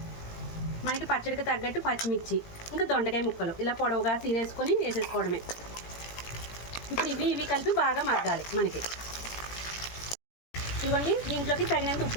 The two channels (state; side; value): late; right; 18 ms